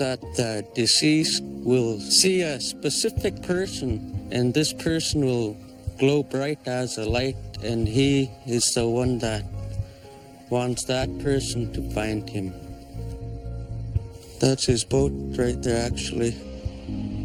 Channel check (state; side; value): identical; both; correlation 1.00